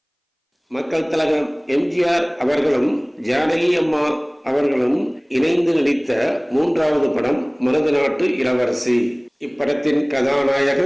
மக்கள் திலகம் எம்ஜிஆர் அவர்களும் ஜானகி அம்மா அவர்களும் இணைந்து நடித்த 3வது படம் மருதநாட்டு இளவரசி. இப்படத்தின்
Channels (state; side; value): identical; both; correlation 1.00